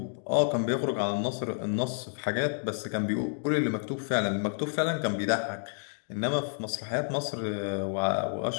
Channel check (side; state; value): right; silent; digital silence